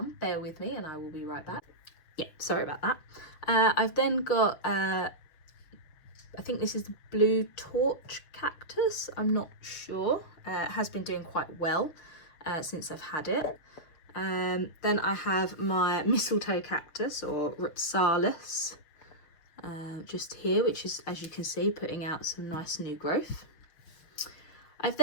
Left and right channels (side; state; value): right; late; 6.3 ms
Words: Bear with me and I will be right back. Yeah, sorry about that. I've then got, I think this is the blue torch cactus. I'm not sure. It has been doing quite well since I've had it. Then I have my mistletoe cactus, or Ripsalis, just here, which is, as you can see, putting out some nice new growth. I've